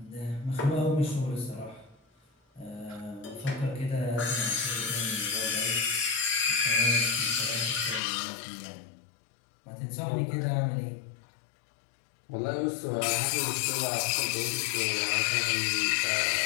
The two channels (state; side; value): drops out; right; at 8.0 s